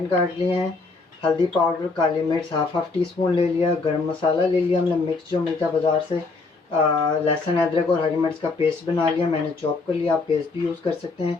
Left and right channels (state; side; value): quieter; right; 3.9 dB